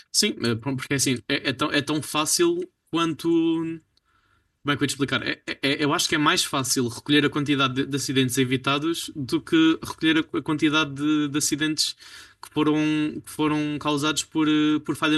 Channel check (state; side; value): identical; both; correlation 1.00